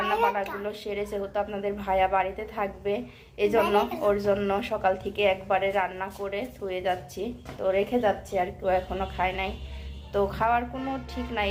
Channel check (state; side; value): identical; both; correlation 1.00